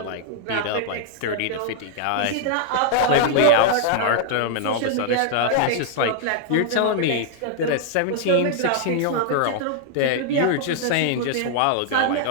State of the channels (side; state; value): both; different; correlation -0.01